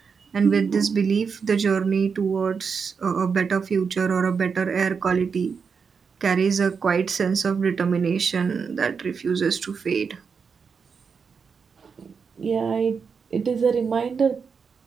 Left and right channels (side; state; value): left; quieter; 5.8 dB